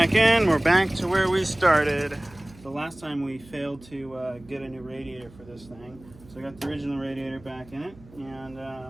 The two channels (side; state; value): right; noise; hum, 22 dB below the sound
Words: in. We're back to where we started. The last time we failed to get a new radiator for this thing. So I got the original radiator back in it.